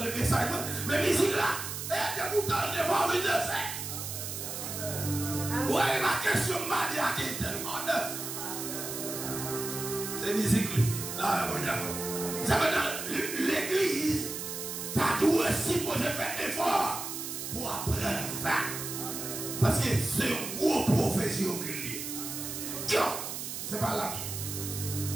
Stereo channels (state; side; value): noise; right; hiss, 6 dB below the sound